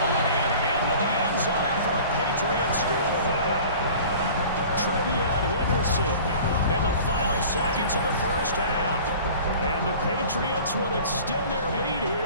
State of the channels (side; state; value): both; inverted; correlation -0.43